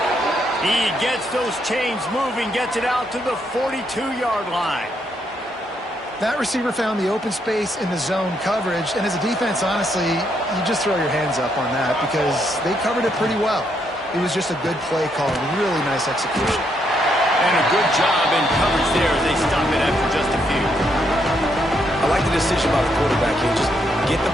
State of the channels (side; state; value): both; normal; correlation 0.76